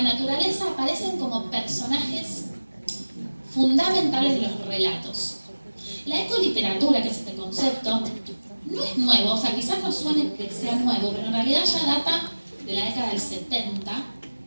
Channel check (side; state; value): both; inverted; correlation -1.00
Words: naturaleza aparecen como personajes fundamentales de los relatos. La ecoliteratura, que es este concepto, no es nuevo, o sea, quizás no suene que sea nuevo, pero en realidad ya data de la década del 70,